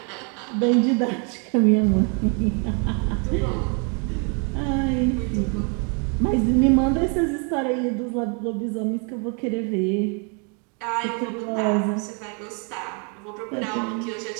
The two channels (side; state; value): left; quieter; 36.7 dB